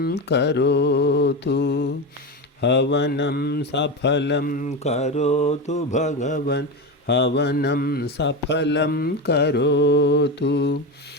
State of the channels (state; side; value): normal; both; correlation 0.18